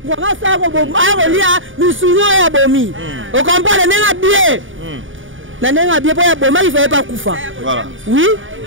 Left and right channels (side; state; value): left; late; 0.57 ms